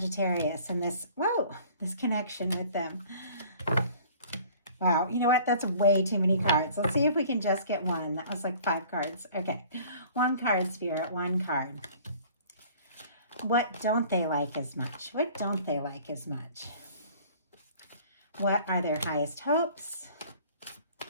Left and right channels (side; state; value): both; inverted; correlation -0.50